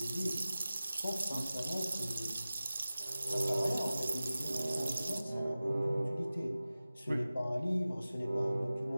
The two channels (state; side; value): inverted; both; correlation -0.96